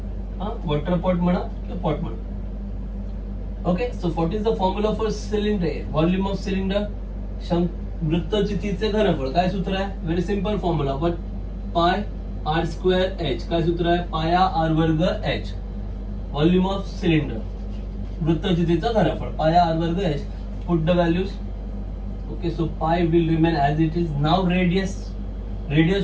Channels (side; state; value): both; identical; correlation 1.00